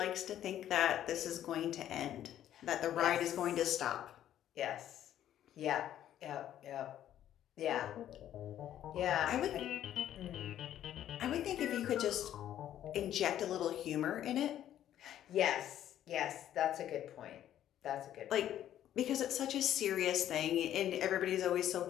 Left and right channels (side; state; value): right; quieter; 11.5 dB